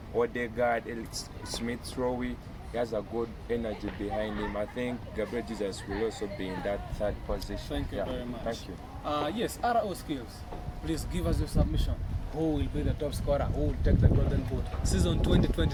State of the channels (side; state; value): both; identical; correlation 1.00